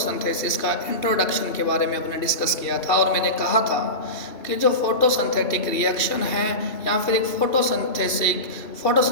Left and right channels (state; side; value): late; right; 2.7 ms